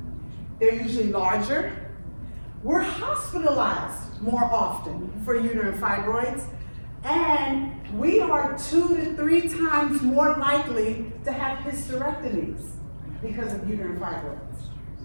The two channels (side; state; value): both; inverted; correlation -1.00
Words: they're usually larger. We're hospitalized more often for uterine fibroids, And we are 2 to 3 times more likely to have hysterectomies because of uterine fibroids.